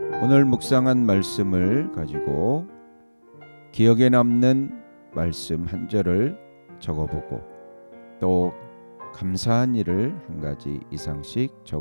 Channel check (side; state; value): both; inverted; correlation -1.00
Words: 오늘 묵상한 말씀을 가지고 기억에 남는 말씀 한 절을 적어보고 또 감사한 일을 한 가지 이상씩